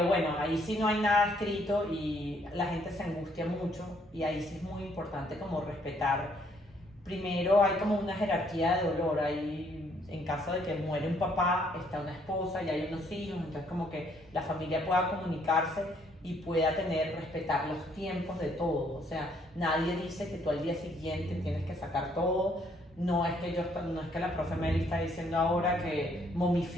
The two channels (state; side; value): normal; both; correlation 0.67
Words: bueno, ahí sí no hay nada escrito y la gente se angustia mucho y ahí sí es muy importante como respetar. Primero hay como una jerarquía de dolor, hay, en caso de que muere un papá, está una esposa y hay unos hijos, entonces como que la familia pueda comunicarse y pueda respetar los tiempos de todo, o sea, nadie dice que tú al día siguiente tienes que sacar todo. No es que la profe Meli está diciendo ahora que